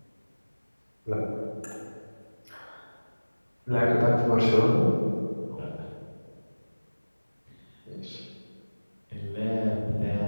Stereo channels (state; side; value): inverted; both; correlation -1.00